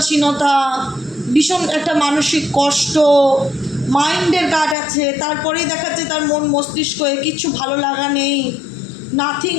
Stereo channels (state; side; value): drops out; right; at 4.8 s